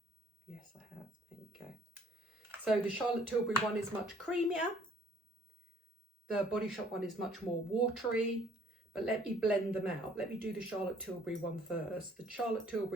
Yes, I have. There you go. So the Charlotte Tilbury one is much creamier. The Body Shop one is much more watery. But let me blend them out. Let me do the Charlotte Tilbury one first. The Charlotte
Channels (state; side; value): normal; both; correlation 0.60